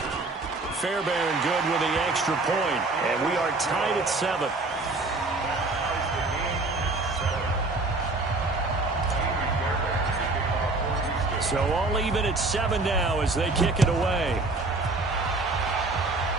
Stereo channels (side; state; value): left; quieter; 3.3 dB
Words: Fairbairn good with the extra point, and we are tied at 7. So all even at 7 now as they kick it away.